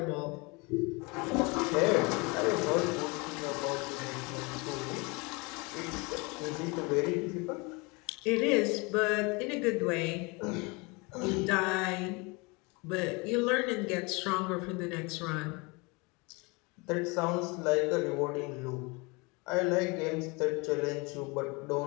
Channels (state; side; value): quieter; right; 27.9 dB